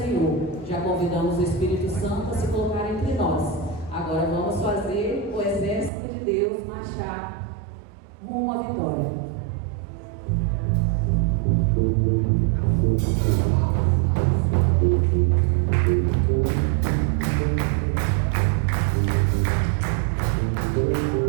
Já convidamos o Espírito Santo a se colocar entre nós. Agora vamos fazer o exército de Deus marchar rumo à vitória.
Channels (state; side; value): drops out; left; at 5.9 s